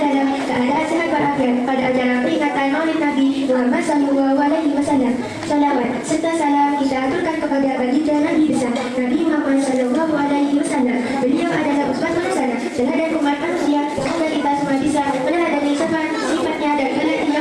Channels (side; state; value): both; identical; correlation 1.00